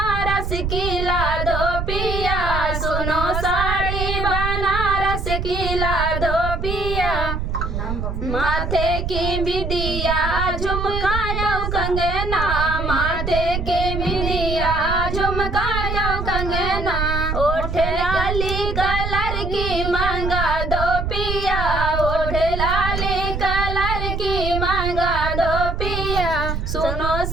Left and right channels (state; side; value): noise; right; rumble, 3 dB below the sound